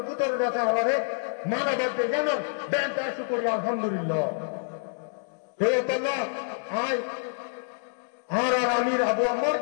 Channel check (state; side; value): silent; right; 60 dB below the other